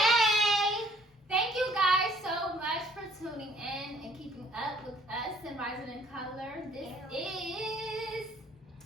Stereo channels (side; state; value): both; normal; correlation 0.60